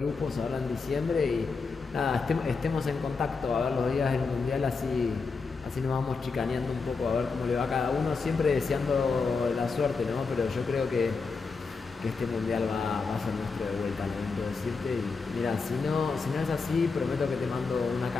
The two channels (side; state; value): right; quieter; 4.6 dB